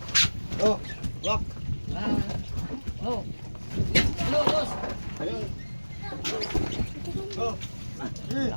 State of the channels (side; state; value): both; inverted; correlation -1.00